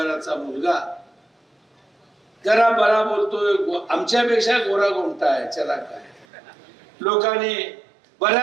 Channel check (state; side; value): drops out; left; at 6.2 s